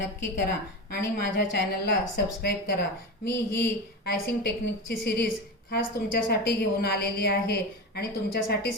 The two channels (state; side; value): normal; both; correlation 0.23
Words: करा आणि माझ्या चॅनलला सबस्क्राईब करा. मी ही आयसिंग टेक्निकची सिरीज खास तुमच्यासाठी घेऊन आलेली आहे आणि